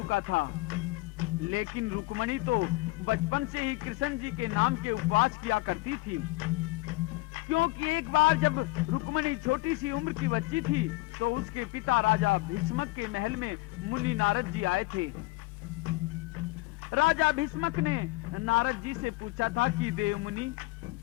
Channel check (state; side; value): quieter; right; 21.4 dB